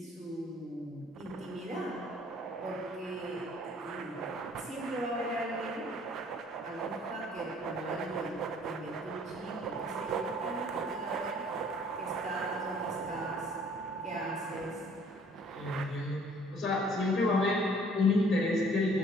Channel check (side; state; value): both; normal; correlation 0.57